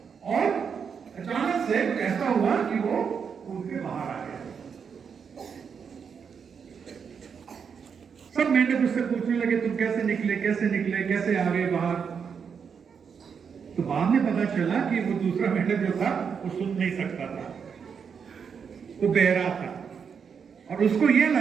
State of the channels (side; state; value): left; quieter; 6.6 dB